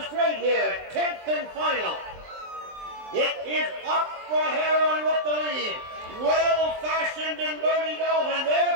straight here, 10th and final. It is Opera Heroine with the lead. Well-Fashioned and Bernie Dalton, they're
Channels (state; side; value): late; left; 23 ms